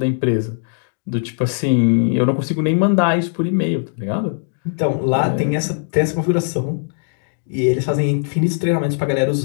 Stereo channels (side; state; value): right; silent; digital silence